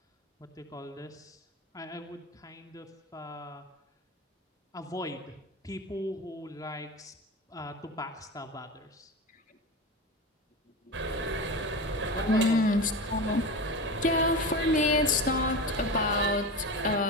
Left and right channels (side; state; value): both; normal; correlation 0.25